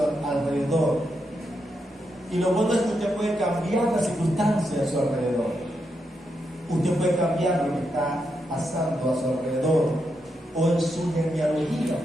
alrededor. Y lo bueno es que usted puede cambiar las circunstancias a su alrededor. Usted puede cambiar lo que está pasando a su alrededor o en su genealogía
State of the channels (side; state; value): both; normal; correlation 0.83